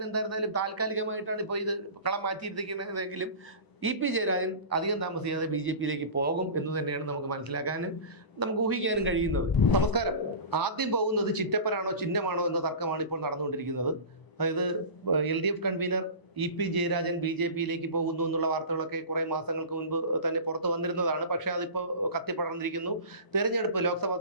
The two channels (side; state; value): right; late; 1.0 ms